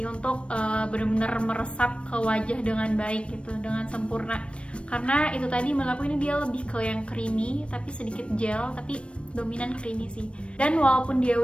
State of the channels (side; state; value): right; late; 0.059 ms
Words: untuk benar-benar meresap ke wajah dengan baik gitu, dengan sempurna. Karena itu tadi menurut aku ini dia lebih ke yang creamy, tapi sedikit gel, tapi dominan creamy sih. Dan walaupun dia